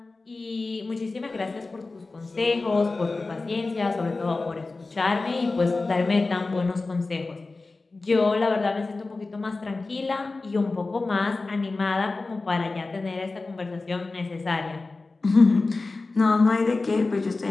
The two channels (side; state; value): right; quieter; 3.5 dB